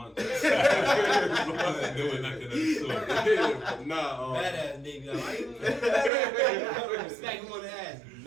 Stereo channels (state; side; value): drops out; left; at 6.1 s